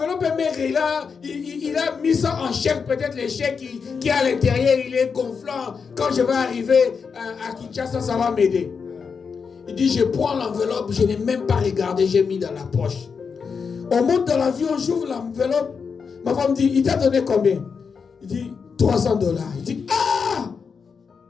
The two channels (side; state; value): right; quieter; 5.8 dB